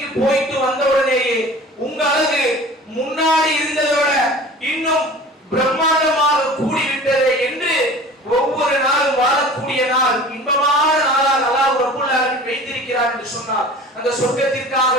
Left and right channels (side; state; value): both; normal; correlation 0.42